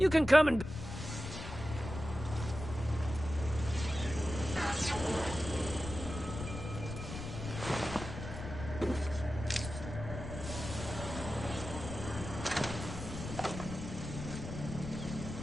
can come and...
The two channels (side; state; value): left; noise; rumble, 8 dB below the sound